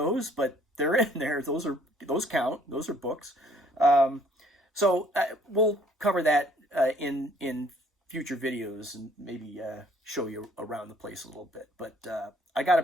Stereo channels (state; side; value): normal; both; correlation 0.61